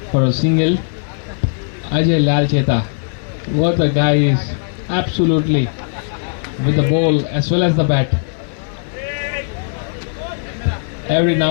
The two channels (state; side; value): silent; right; 66 dB below the other